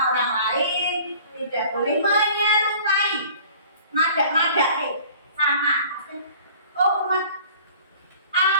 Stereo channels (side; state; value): both; inverted; correlation -0.48